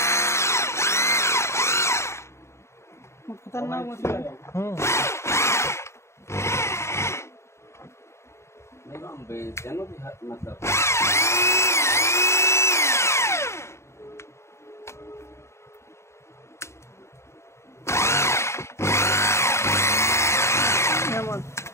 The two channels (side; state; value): right; late; 0.13 ms